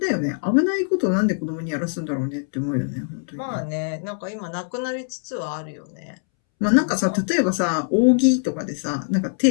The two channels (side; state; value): right; silent; 64 dB below the other